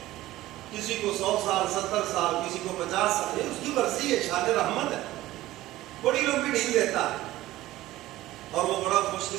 کسی کو 100 سال 70 سال، کسی کو 50 سال، یہ اس کی مرضی ہے، شان رحمت ہے. بڑی لوگ بھی ڈھیل دیتا ہے، اور وہ بڑا خوش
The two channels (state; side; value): quieter; left; 16.2 dB